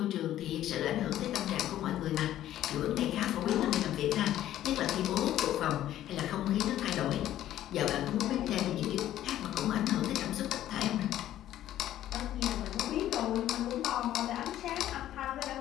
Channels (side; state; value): right; quieter; 12.7 dB